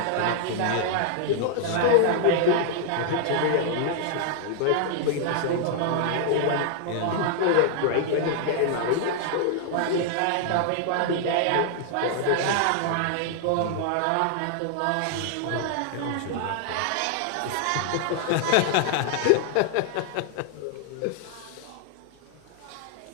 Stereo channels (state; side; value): different; both; correlation 0.00